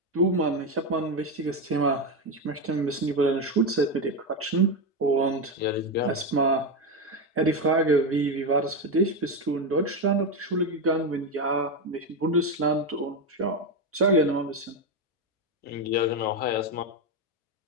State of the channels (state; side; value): normal; both; correlation 0.11